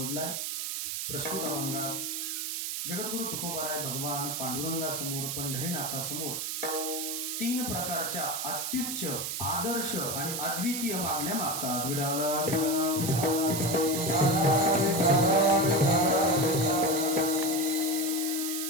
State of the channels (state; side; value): noise; right; hiss, 3 dB below the sound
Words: प्रस्तुत अभंगात जगद्गुरु तुकोबाराय भगवान पांडुरंगासमोर पंढरीनाथासमोर 3 प्रकारच्या अत्युच्च आदर्श आणि अद्वितीय मागण्या मागतात.